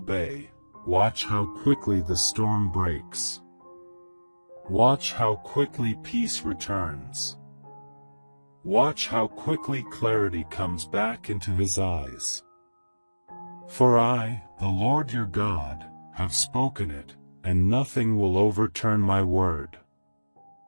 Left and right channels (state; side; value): inverted; both; correlation -1.00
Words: watch how quickly the storm breaks. Watch how quickly peace returns. Watch how quickly clarity comes back into his eyes. For I, the Lord your God, have spoken it, and nothing will overturn my word.